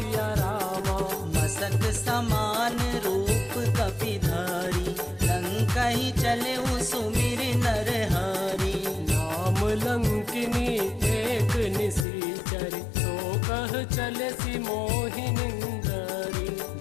रामा। मसक समान रूप कपि धरी, लंकहि चले सुमिर नर हरि। नाम लंकिनी एक निशिचर, तो कह चले सी मोहिनिंदरी।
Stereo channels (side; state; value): right; drops out; at 12.1 s